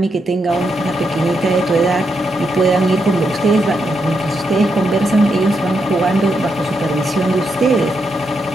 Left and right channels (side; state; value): both; normal; correlation 0.82